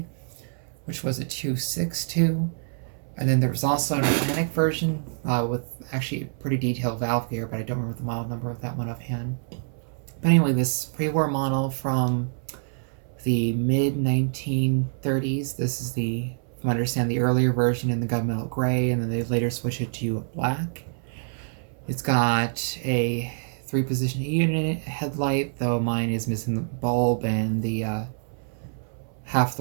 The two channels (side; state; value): left; silent; 61 dB below the other